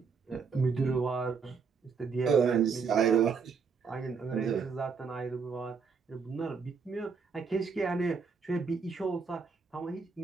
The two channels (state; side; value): quieter; left; 5.4 dB